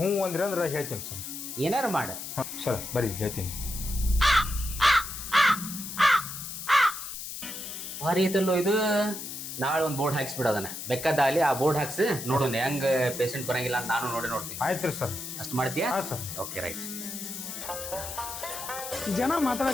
ಹ್ಞೂ ಅಂದ್ರಿ ಅಂದ್ರೆ ಹೇಳ್ತೀನಿ ಸರ್. ಏನಾರು ಮಾಡ. ಹಾಂ ಸರ್ ಬರೀ ಹೇಳ್ತೀನಿ. ಭಾರಿ ಐತಲ್ಲೋ ಇದು. ನಾಳೆ ಒಂದು ಬೋರ್ಡ್ ಹಾಕ್ಸ್ಬಿಡೋದನ್ನ ಬೆಕ್ಕದಾಲಿ ಆ ಬೋರ್ಡ್ ಹಾಕ್ಸಿ ನೋಡೋಣ ಹೆಂಗ್ ಪೇಷಂಟ್ ಬರಂಗಿಲ್ಲ ಅಂತ ನಾನು ನೋಡ್ತೀನಿ. ಆಯ್ತು ರೀ ಸರ್. ಅಷ್ಟು ಮಾಡ್ತೀಯಾ? ಹಾಂ ಸರ್. Okay right. ಜನ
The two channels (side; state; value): left; noise; hiss, 8 dB below the sound